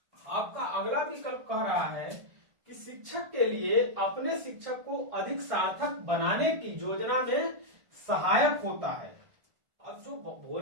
आपका अगला विकल्प कह रहा है कि शिक्षक के लिए अपने शिक्षक को अधिक सार्थक बनाने की योजना में सहायक होता है। अब जो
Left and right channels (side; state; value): left; late; 1.5 ms